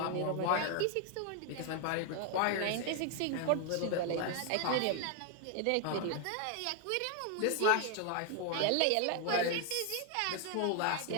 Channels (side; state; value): both; different; correlation 0.00